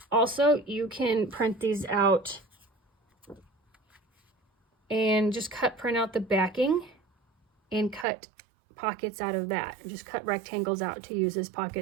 Also, you can print these out and just print out the backing and cut pockets out of that. Just cut rectangles out to use as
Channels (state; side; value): drops out; left; at 8.1 s